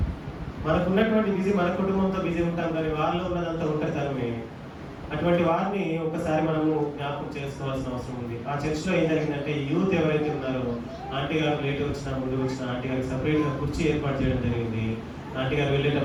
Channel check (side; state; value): both; identical; correlation 1.00